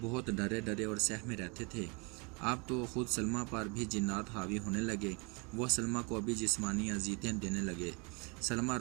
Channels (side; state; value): left; quieter; 30.7 dB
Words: ڈرے ڈرے اور سہمے رہتے تھے۔ اب تو خود سلمیٰ پر بھی جنات حاوی ہونے لگے، وہ سلمیٰ کو بھی جسمانی اذیتیں دینے لگے۔ سلمیٰ